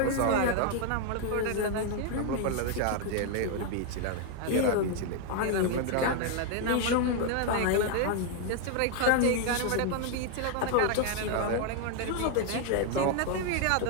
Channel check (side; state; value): both; different; correlation 0.00